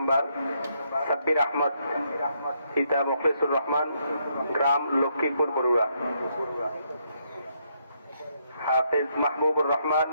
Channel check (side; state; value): both; inverted; correlation -0.75